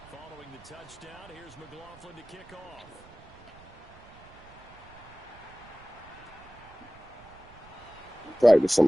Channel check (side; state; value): right; noise; rumble, 22 dB below the sound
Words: Following the touchdown, here's McLaughlin to kick off. Practicing